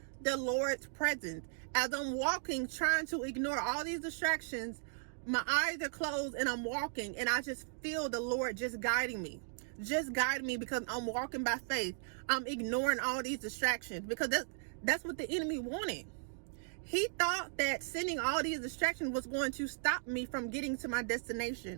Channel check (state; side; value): silent; left; digital silence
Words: the Lord's presence. As I'm walking, trying to ignore all these distractions, my eyes are closed and I'm walking, and I just feel the Lord just guiding me. Just guide me, because I'm walking by faith. I'm ignoring all these distractions, because that's what the enemy wanted. He thought that sending all these distractions was going to stop me from getting to my